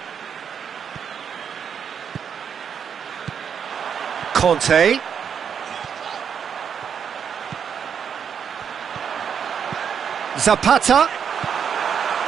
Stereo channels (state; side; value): quieter; left; 7.5 dB